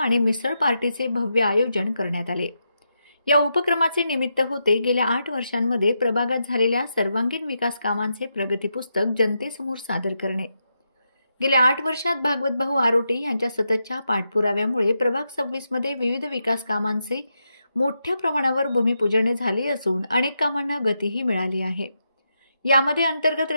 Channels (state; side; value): inverted; both; correlation -0.85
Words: मिसळ पार्टीचे भव्य आयोजन करण्यात आले। या उपक्रमाचे निमित्त होते गेल्या 8 वर्षांमध्ये प्रभागात झालेल्या सर्वांगीण विकास कामांचे प्रगती पुस्तक जनतेसमोर सादर करणे। गेल्या 8 वर्षात भागवतभाऊ आरोटे यांच्या सततच्या पाठपुराव्यामुळे प्रभाग 26 मध्ये विविध विकास कामांचे मोठ्या प्रमाणावर भूमिपूजन झाले असून अनेक कामांना गतीही मिळाली आहे। यामध्ये अंतर्गत